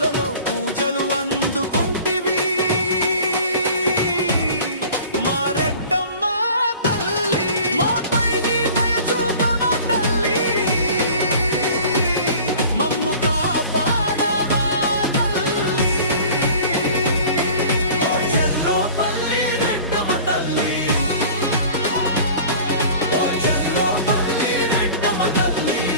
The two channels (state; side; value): inverted; both; correlation -0.44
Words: పూజలు అందుకుంటివి మా రెడ్డమ్మ తల్లి. మాపై నీ దయ చూపవా తల్లి, మమ్ము కాపాడవా తల్లి. ఓ చెర్లోపల్లి రెడ్డమ్మ తల్లి, ఓ చెర్లోపల్లి రెడ్డమ్మ తల్లి.